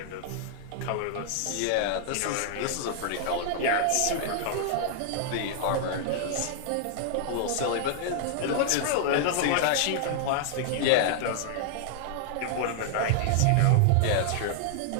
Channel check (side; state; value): both; different; correlation -0.01